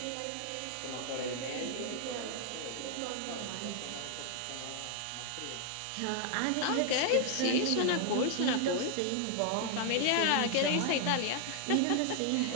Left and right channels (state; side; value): different; both; correlation 0.00